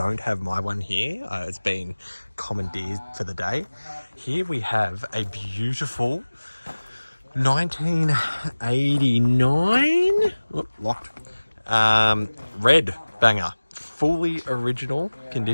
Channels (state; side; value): inverted; both; correlation -1.00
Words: have my one here. It's been commandeered for the day. Here we have a beautiful 1989 locked red banger, fully original